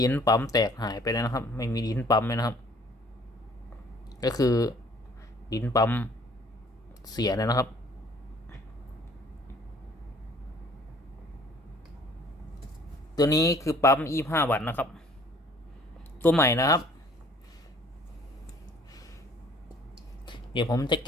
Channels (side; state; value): both; normal; correlation 0.56